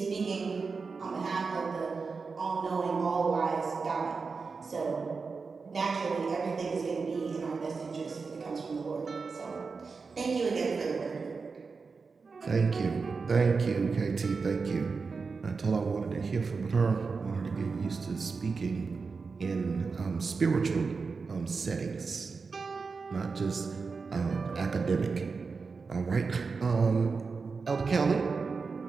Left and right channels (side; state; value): left; quieter; 4.7 dB